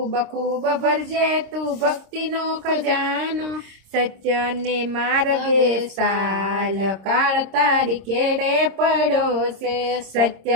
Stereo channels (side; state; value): left; late; 26 ms